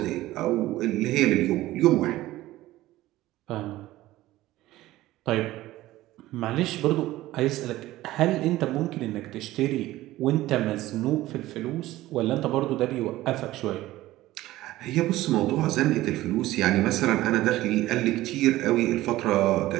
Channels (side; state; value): left; quieter; 16.4 dB